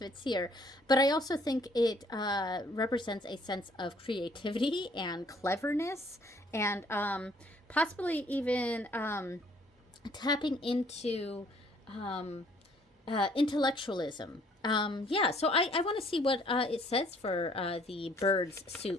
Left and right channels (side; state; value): both; normal; correlation 0.61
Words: here. But I also think it represents a sense of creativity and cleverness, and possibly even tapping into intellectualism. Yeah, so I want to see what it says for the birds